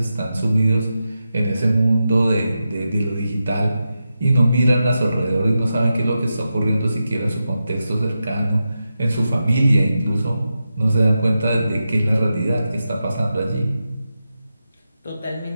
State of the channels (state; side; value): inverted; both; correlation -0.89